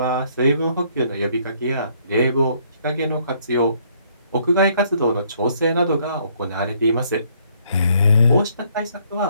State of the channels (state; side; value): inverted; both; correlation -0.66